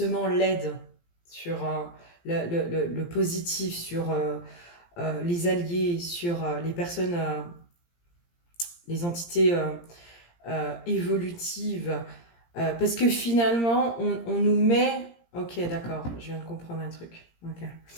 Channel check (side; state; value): right; late; 17 ms